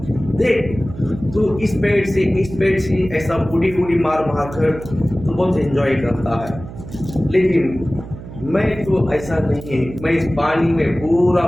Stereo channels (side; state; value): right; noise; hum, 13 dB below the sound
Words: देख तू इस पेड़ से ऐसा बूढ़ी बूढ़ी मार कर तो बहुत एंजॉय करता है, लेकिन मैं तो ऐसा नहीं है। मैं इस पानी में पूरा